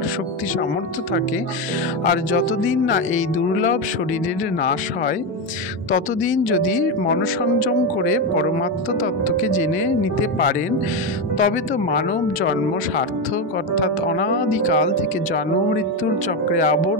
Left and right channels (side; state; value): both; normal; correlation 0.12